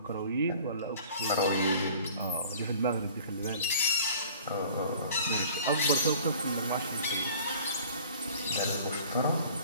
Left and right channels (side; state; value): both; inverted; correlation -0.48